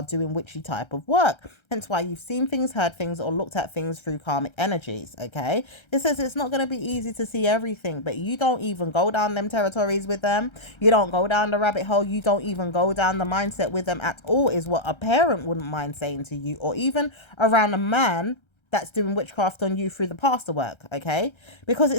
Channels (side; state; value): right; late; 1.3 ms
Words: doing witchy type of work. Hence why you've seen things, heard things, or looked at things through karmic energies. Okay, it says it's not going to be easy to see everything, but you don't even go down them territories with them. You don't go down the rabbit hole. You don't even go down the mindset with them at all, is what a parent wouldn't mind saying to you, or even around a man that's doing witchcraft on you through the pastor work. Okay, because